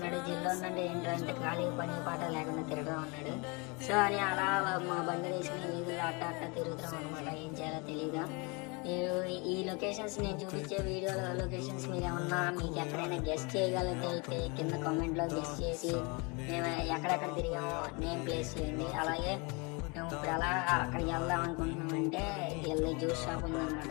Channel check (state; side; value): quieter; right; 29.8 dB